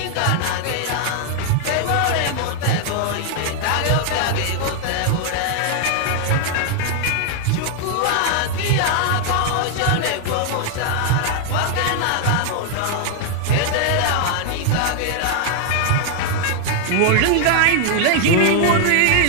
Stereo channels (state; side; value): different; both; correlation 0.00